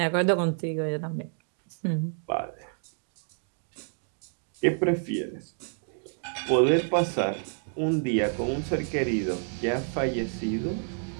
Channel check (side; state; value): left; silent; 59 dB below the other